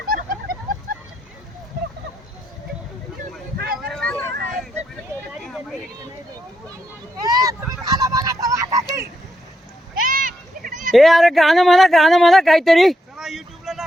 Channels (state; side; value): normal; both; correlation 0.81